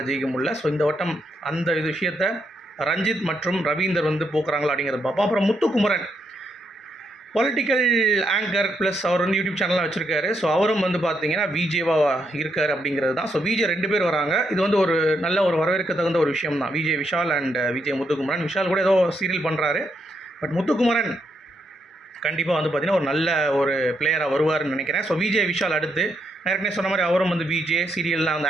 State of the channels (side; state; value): both; normal; correlation 0.78